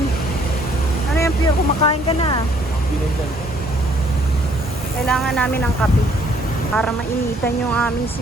Ano yan, Pure? Kumakain ka na. Kailangan namin ng kape para mainitan yung aming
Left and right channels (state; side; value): normal; both; correlation 0.63